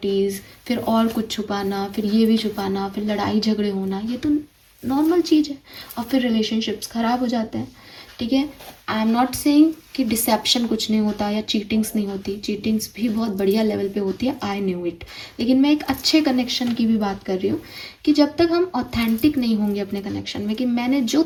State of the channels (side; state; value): both; identical; correlation 1.00